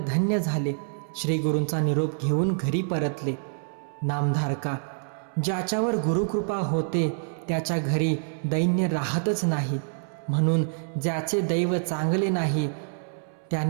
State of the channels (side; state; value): left; silent; 60 dB below the other